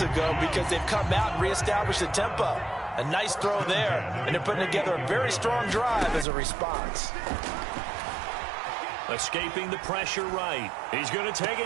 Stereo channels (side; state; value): left; drops out; at 6.2 s